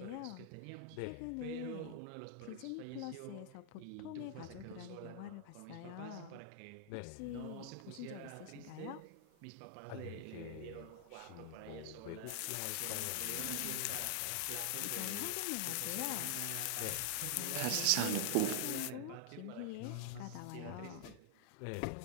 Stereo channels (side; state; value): both; different; correlation 0.00